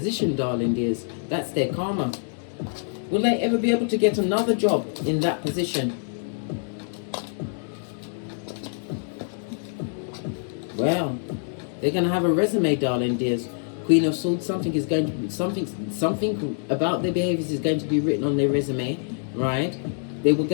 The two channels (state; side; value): silent; right; digital silence